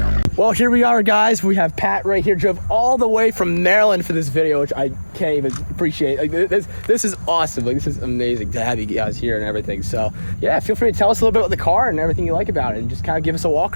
Well, here we are, guys. We have Pat right here, drove all the way from Maryland for this video, which I can't even appreciate. Like, this is awesome. Like, this is amazing to have you guys here and everything. So yeah, feel free to tell us a little bit about the car and everything you like about it, and just kind of give us a walk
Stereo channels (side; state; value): both; inverted; correlation -1.00